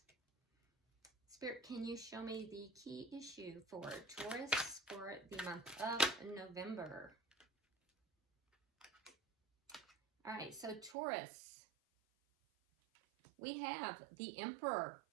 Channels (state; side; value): drops out; left; at 11.0 s